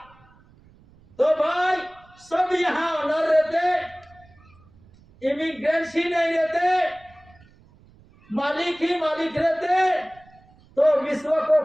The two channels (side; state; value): right; noise; rumble, 28 dB below the sound